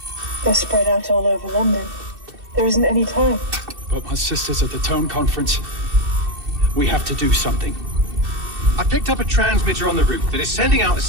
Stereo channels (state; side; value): late; left; 2.7 ms